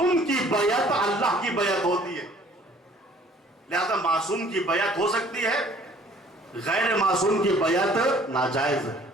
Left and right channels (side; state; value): both; normal; correlation 0.56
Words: کی بیعت اللہ کی بیعت ہوتی ہے، لہذا معصوم کی بیعت ہو سکتی ہے، غیر معصوم کی بیعت ناجائز ہے۔